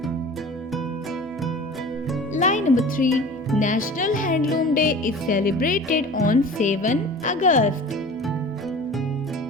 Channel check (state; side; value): normal; both; correlation 0.40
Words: Line number 3. National Handloom Day is celebrated on 7 August.